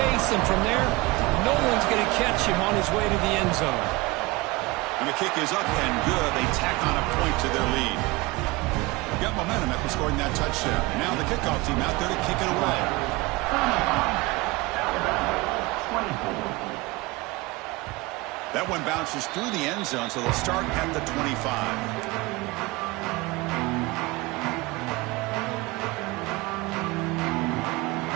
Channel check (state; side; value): quieter; left; 22.7 dB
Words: and from there, no one's going to catch him on his way to the end zone. And the kick is up and good. They tack on a point to their lead. Got momentum after scoring that touchdown. Now the kickoff team out there to kick it away. That one bounces through the end zone, so they'll start at the 25.